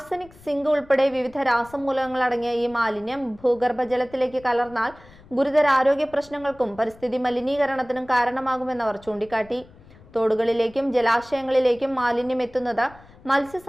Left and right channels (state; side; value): noise; left; rumble, 24 dB below the sound